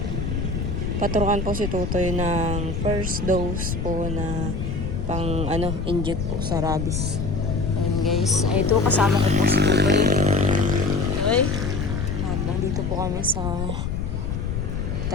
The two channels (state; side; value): noise; left; rumble, 3 dB below the sound